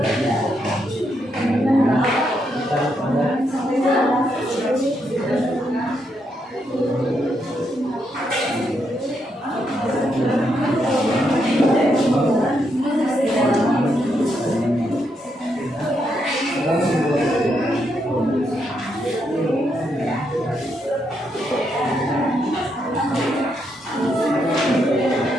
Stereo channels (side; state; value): both; normal; correlation 0.79